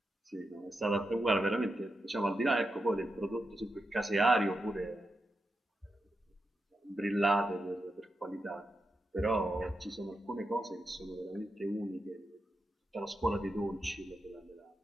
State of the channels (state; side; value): normal; both; correlation 0.87